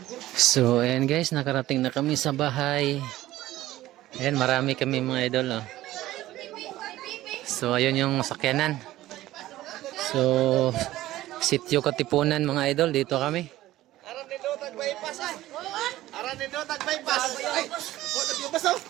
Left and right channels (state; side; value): quieter; left; 15.6 dB